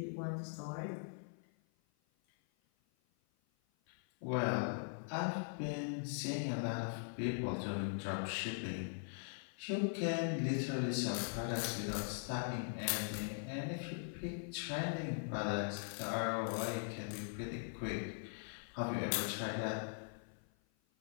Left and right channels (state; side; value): silent; right; 50 dB below the other